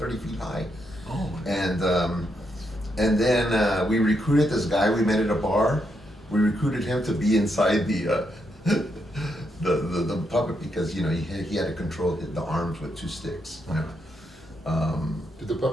feet high. Oh. And then we recruited this guy we met at a bar. We recruited him to be inside the puppet because he had to control the arms with 2 sticks. Did the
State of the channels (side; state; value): both; normal; correlation 0.80